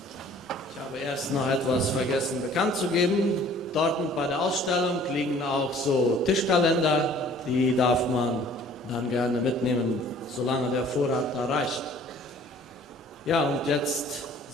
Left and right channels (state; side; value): normal; both; correlation 0.52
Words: Ich habe erst noch etwas vergessen bekannt zu geben. Dort bei der Ausstellung liegen auch so Tischkalender, die darf man dann gerne mitnehmen, solange der Vorrat da reicht. Ja, und jetzt